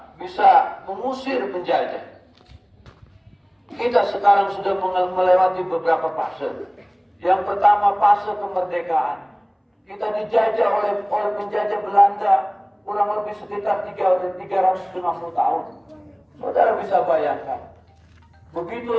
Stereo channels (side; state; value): both; identical; correlation 1.00